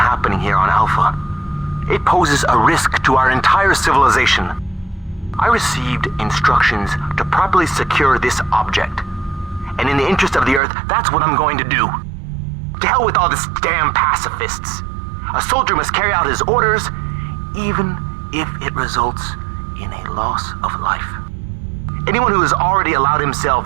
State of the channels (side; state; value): left; drops out; at 10.6 s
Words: here on Alpha. It poses a risk to our entire civilization. I received instructions to properly secure this object. And in the interest of the Earth, that's what I'm going to do. To hell with all this damn pacifists. A soldier must carry out his orders, even if it results in a loss of life. Anyone who has already allowed